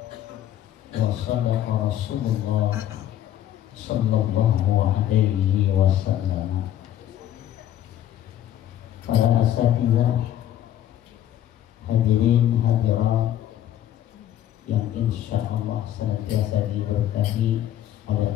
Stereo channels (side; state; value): right; quieter; 11.7 dB